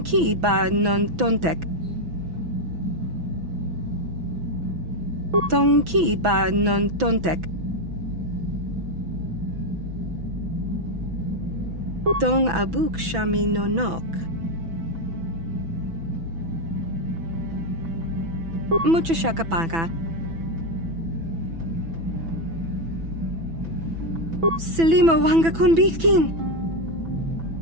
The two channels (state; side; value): late; left; 6.1 ms